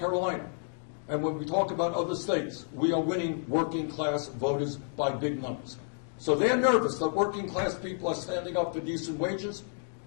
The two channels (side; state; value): right; silent; 58 dB below the other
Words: and when we talk about other states, we are winning working class voters by big numbers. So they're nervous that working class people are standing up for decent wages.